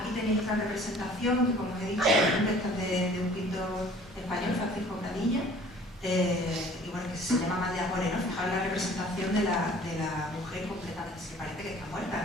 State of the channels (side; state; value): both; normal; correlation 0.51